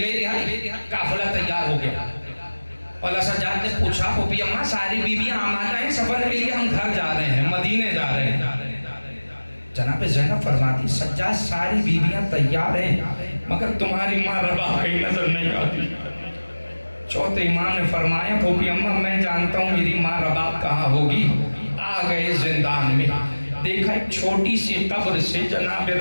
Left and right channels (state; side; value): inverted; both; correlation -1.00